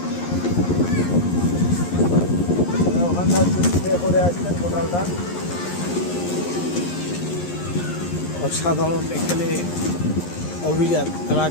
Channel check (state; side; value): late; right; 11 ms